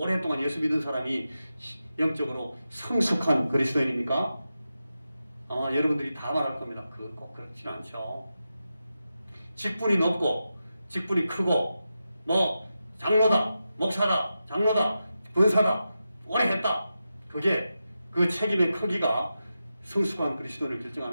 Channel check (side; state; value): both; inverted; correlation -0.90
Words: 예수 믿은 사람이 영적으로 성숙한 그리스도인입니까? 아마 여러분들이 다 말할 겁니다. 그거 꼭 그렇지는 않죠. 직분이 높고 직분이 크고 뭐 장로다, 목사다, 장로다, 권사다, 오래 했다. 그게 그 책임의 크기가 성숙한 그리스도인을